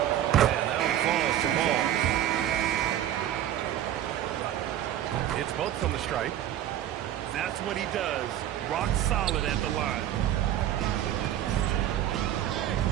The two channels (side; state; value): left; quieter; 11.5 dB